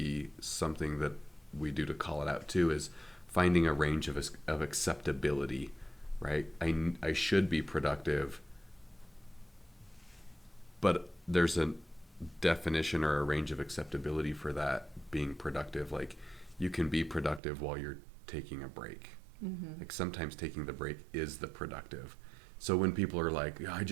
something that we do to call it out too, is finding a range of acceptability, right? I should be productive, but there's a definition or a range of acceptability for that being productive. Like, you can be productive while you're taking a break. Mm-hmm. Like, sometimes taking the break is the productive. So when people are like, I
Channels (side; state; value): left; drops out; at 17.4 s